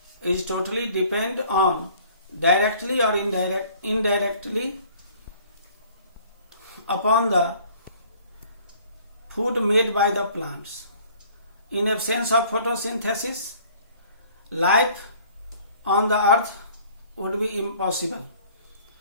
is totally depend on directly or indirectly upon the food made by the plants. In absence of photosynthesis, life on the earth would be impossible.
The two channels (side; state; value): both; inverted; correlation -0.54